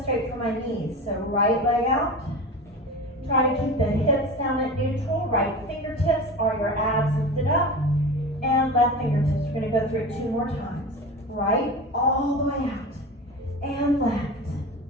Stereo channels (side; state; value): both; normal; correlation 0.30